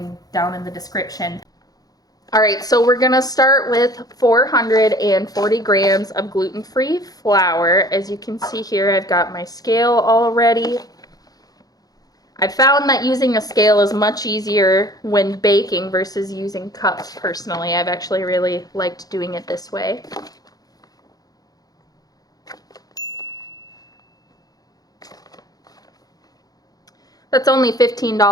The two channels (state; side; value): late; right; 0.18 ms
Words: down in the description. All right, so we're going to start with 440 grams of gluten-free flour. As you can see here, I've got my scale all ready. I found that using a scale is much easier when baking versus using cups personally. I've actually really liked doing it this way. That's only